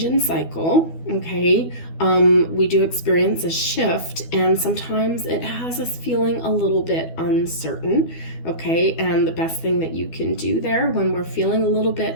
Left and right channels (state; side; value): late; right; 12 ms